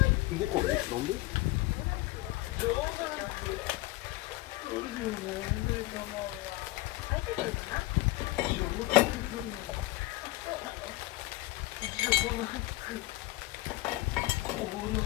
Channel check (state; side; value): quieter; right; 19.5 dB